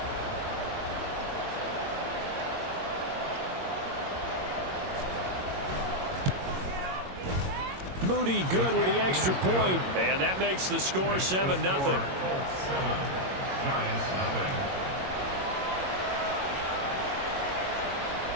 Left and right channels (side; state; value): left; late; 22 ms